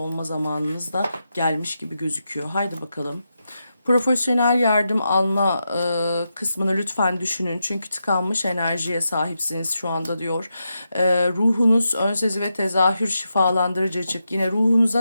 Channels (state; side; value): inverted; both; correlation -0.87